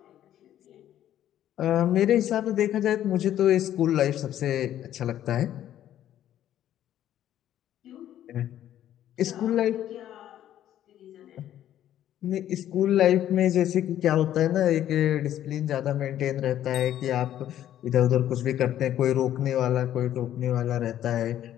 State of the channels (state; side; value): quieter; right; 11.7 dB